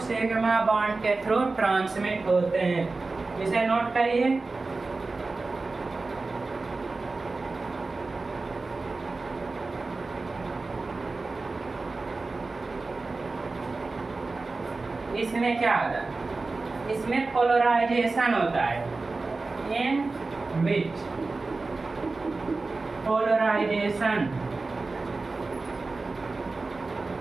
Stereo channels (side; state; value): left; quieter; 3.6 dB